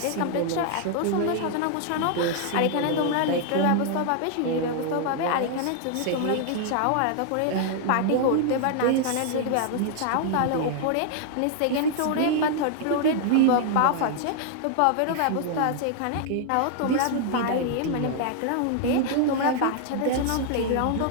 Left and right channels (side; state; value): both; different; correlation 0.00